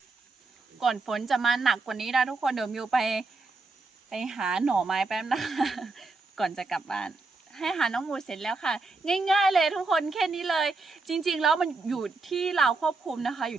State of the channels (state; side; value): quieter; left; 3.7 dB